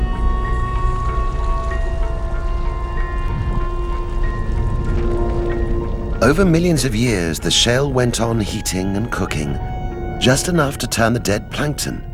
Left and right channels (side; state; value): both; identical; correlation 1.00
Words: Over millions of years, the shale went on heating and cooking, just enough to turn the dead plankton